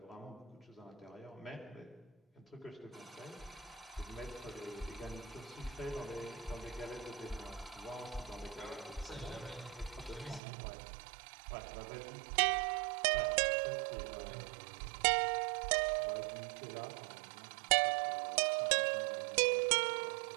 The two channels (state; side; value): drops out; left; at 10.4 s